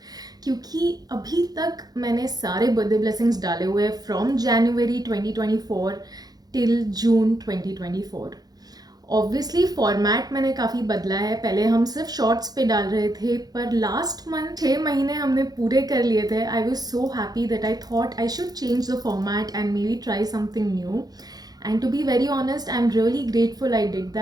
क्योंकि अभी तक मैंने सारे बर्थडे ब्लेसिंग्स डाले हुए हैं from January 2024 till June 2024. Obviously format मैंने काफ़ी बदला है. पहले हम सिर्फ शॉर्ट्स पे डाल रहे थे, पर लास्ट मंथ 6 महीने हमने पूरे कर लिए थे. I was so happy that I thought I should change the format and maybe try something new. And to be very honest, I am really grateful I did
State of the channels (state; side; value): late; left; 0.19 ms